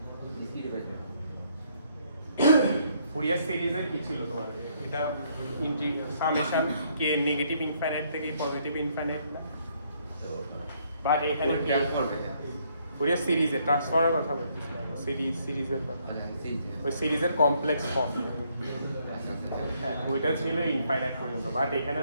ডিসক্রিট পেতে ফুরিয়ার সিরিজে কি ছিল তোমার, এটা সামেশন কে নেগেটিভ ইনফাইনাইট থেকে পজিটিভ ইনফাইনাইট, বাট এখানে কি করবে ফুরিয়ার সিরিজে ট্রান্সফর্মের কথা বলছি, সিরিজের কথা, ওই সিরিজের কমপ্লেক্স ফর্ম। হ্যাঁ, ওইটা ছিল ইনফাইনাইট পর্যন্ত, বাট এখানে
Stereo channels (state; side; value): inverted; both; correlation -0.69